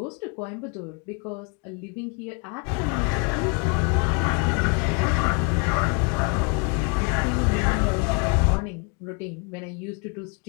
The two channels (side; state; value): right; quieter; 34.7 dB